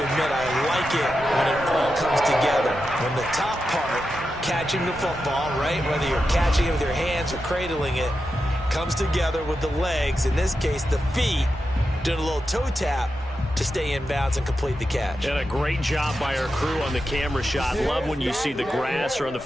admit, I like it when it all comes together. When the top part, catching the football, right, whether you're catching it with your hands or cradling it, comes together with the legs, in this case the feet, doing a little toe tap to stay in bounds and complete the catch. And a great job by our crew on the camera shot. Love when you see the grass or on the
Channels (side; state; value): both; normal; correlation 0.89